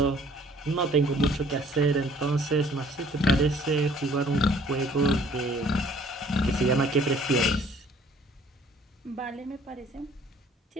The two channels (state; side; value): normal; both; correlation 0.57